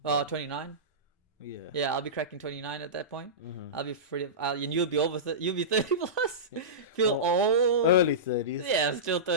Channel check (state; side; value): normal; both; correlation -0.19